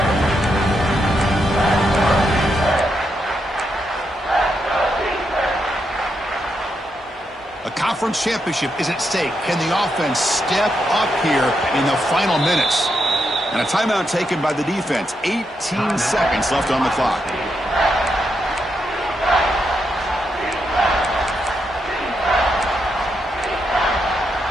Conference championship is at stake. Can the offense step up here in the final minutes? And a timeout taken by the defense. 18 seconds left on the clock.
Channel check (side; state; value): both; normal; correlation 0.82